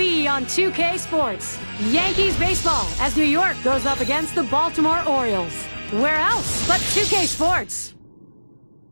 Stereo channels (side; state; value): both; inverted; correlation -1.00